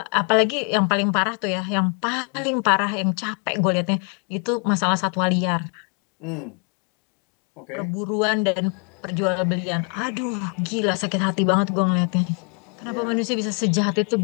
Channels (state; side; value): quieter; right; 38.0 dB